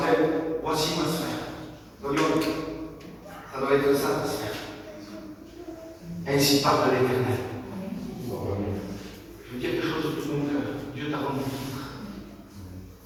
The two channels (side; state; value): both; identical; correlation 1.00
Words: voici ma sphère. Voyons, ça doit être ça, ma sphère. Ainsi parle l'Éternel. Je veux dire quelque chose de tout mon cœur. Dieu t'a rendu libre.